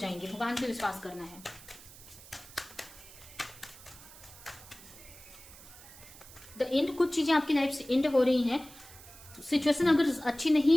भगवान पे विश्वास करना है। द एंड, कुछ चीजें आपकी लाइफ से एंड हो रही हैं। सिचुएशन अगर अच्छी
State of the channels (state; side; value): noise; right; hiss, 19 dB below the sound